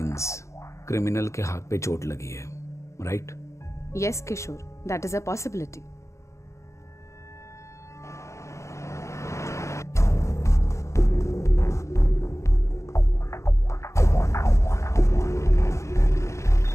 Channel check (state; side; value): late; right; 0.14 ms